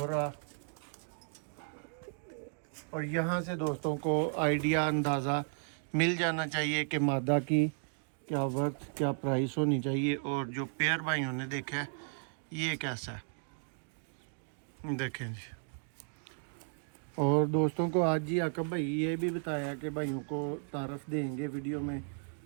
और यहाँ से दोस्तों को आइडिया अंदाज़ा मिल जाना चाहिए कि मादा की क्या वर्थ क्या प्राइस होनी चाहिए। और जो पेयर भाइयों ने देखा है ये कैसा है देखें जी। और दोस्तों को आज जी आका भाई ये भी बताया कि भाइयों को तारफ़ देंगे, वीडियो में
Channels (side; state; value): left; silent; 55 dB below the other